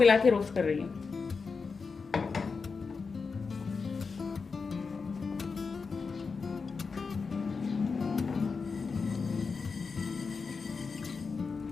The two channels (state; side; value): quieter; right; 4.9 dB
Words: के रोस्ट कर रही हूँ।